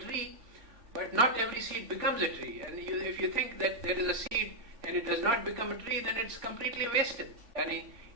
but not every seed becomes a tree. And if you think that there is a seed and it does not become a tree, then it's completely wasted. And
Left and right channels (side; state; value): left; late; 3.5 ms